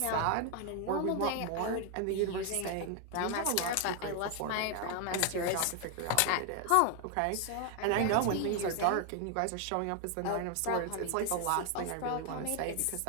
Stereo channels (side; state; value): both; different; correlation 0.01